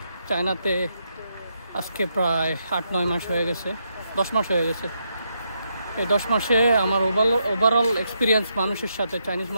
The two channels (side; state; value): both; inverted; correlation -0.80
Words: চায়নাতে আজকে প্রায় 8-9 মাস হয়ে গেছে, 10 মাস হয়ে গেছে। এই 10 মাসে আমার ওভারঅল এক্সপিরিয়েন্স মানুষের সাথে, চাইনিজ